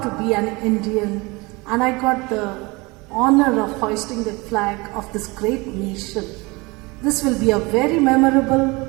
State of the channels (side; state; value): left; quieter; 24.9 dB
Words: to be an Indian, and I got the honor of hoisting the flag of this great nation. This will be a very memorable